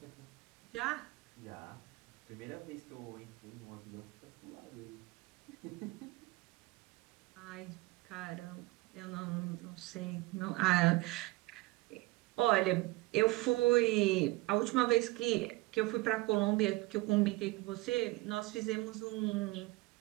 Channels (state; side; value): quieter; left; 21.3 dB